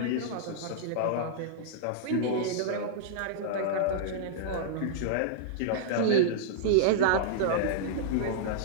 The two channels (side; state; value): both; different; correlation -0.02